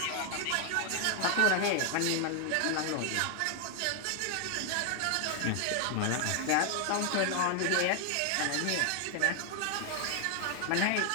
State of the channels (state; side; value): different; both; correlation 0.00